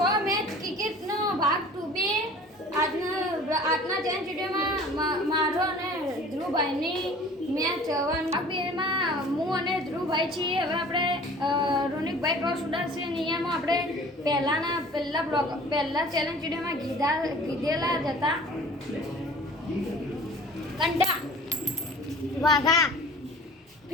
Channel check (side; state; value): both; normal; correlation 0.45